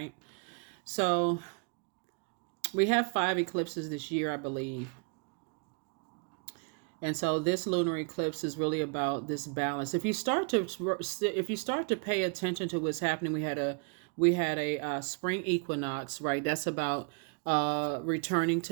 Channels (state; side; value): quieter; left; 37.0 dB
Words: So we have 5 eclipses this year, I believe. And so this lunar eclipse is really about this balance. If you start to pay attention to what's happening, we had a spring equinox, right? That's about returning